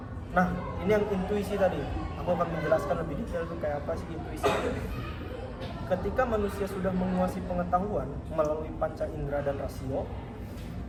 Nah, ini yang intuisi tadi. Aku akan menjelaskan lebih detail itu kayak apa sih intuisi. Ketika manusia sudah menguasai pengetahuan melalui panca indera dan rasio,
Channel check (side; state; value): both; identical; correlation 1.00